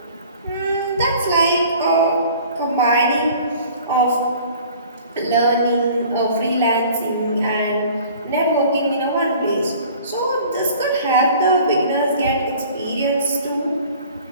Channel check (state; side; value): inverted; both; correlation -0.48